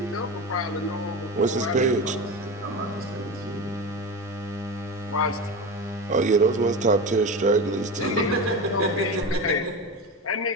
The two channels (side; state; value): both; normal; correlation 0.24